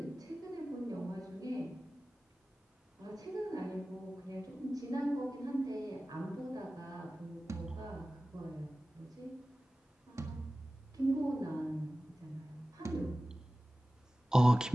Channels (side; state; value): both; normal; correlation 0.96